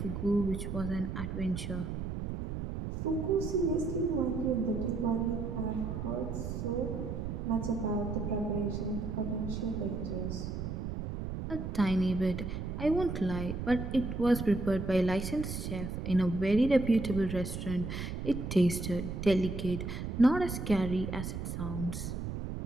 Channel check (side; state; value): right; noise; rumble, 5 dB below the sound